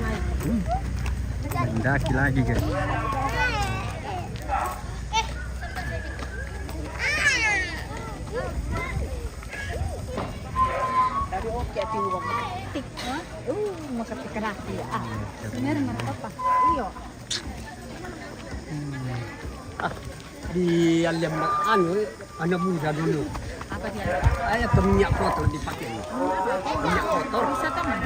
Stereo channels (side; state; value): both; identical; correlation 1.00